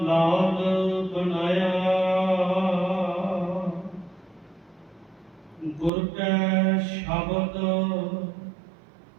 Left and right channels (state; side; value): drops out; left; at 5.9 s